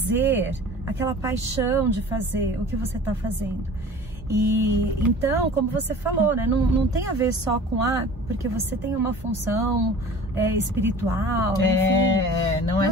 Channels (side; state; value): both; normal; correlation 0.43